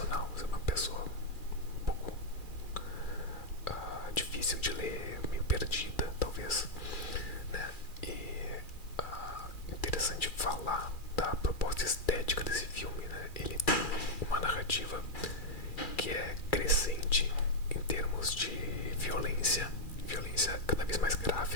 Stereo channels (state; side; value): late; right; 2.4 ms